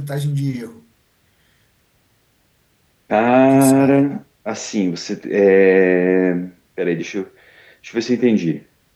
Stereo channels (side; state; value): both; identical; correlation 1.00